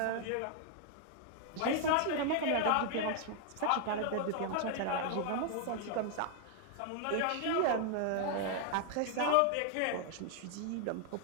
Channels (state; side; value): different; both; correlation 0.00